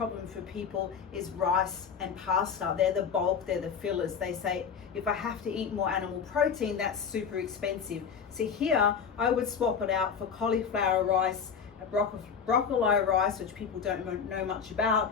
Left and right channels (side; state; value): right; quieter; 6.6 dB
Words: for people is rice and pasta. They're the bulk, they're the fillers. They say, if I have to eat more animal protein, that's super expensive. So here, I would swap it out for cauliflower rice, broccoli rice, which people don't know much